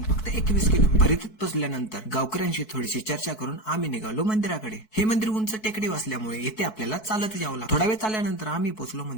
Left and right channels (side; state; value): right; late; 4.6 ms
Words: फक्त 21 किलोमीटर. परितीत पोहोचल्यानंतर गावकऱ्यांशी थोडीशी चर्चा करून आम्ही निघालो मंदिराकडे. हे मंदिर उंच टेकडी असल्यामुळे इथे आपल्याला चालत यावं लागतं. थोडा वेळ चालल्यानंतर आम्ही पोहोचलो